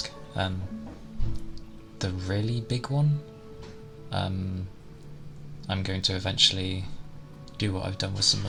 The really big one, I'm going to eventually do what I've done with some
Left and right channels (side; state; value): both; identical; correlation 1.00